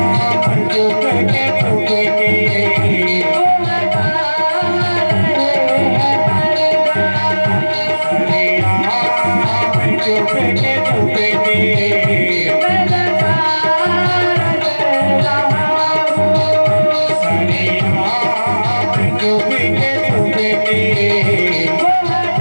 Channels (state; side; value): inverted; both; correlation -1.00